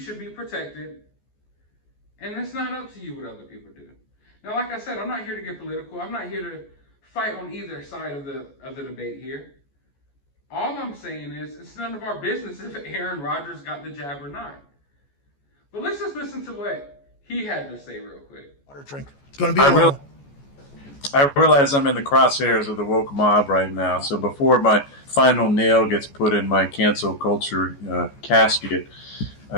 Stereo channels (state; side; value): late; right; 14 ms